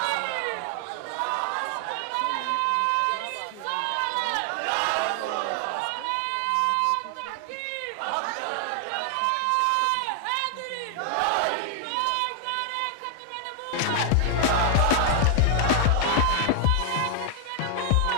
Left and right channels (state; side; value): different; both; correlation 0.00